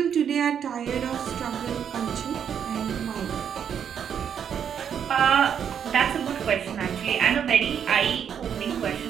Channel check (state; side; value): quieter; left; 8.1 dB